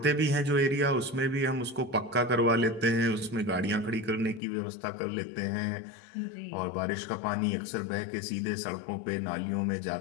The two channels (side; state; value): right; drops out; at 4.4 s